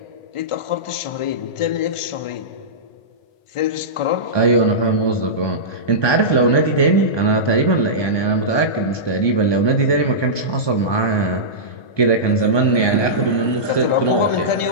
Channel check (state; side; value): late; right; 1.2 ms